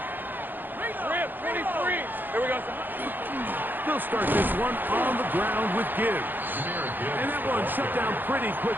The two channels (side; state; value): left; late; 0.090 ms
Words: Rip, 23. Here we go. They'll start this one on the ground with Gibbs. And that one shut down pretty